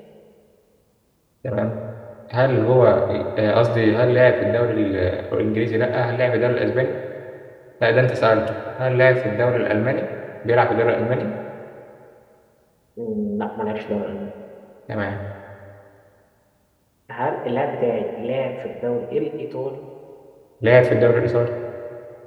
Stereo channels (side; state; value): both; identical; correlation 1.00